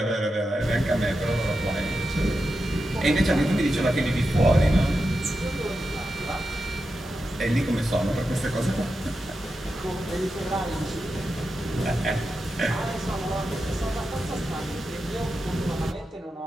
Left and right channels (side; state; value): both; normal; correlation 0.89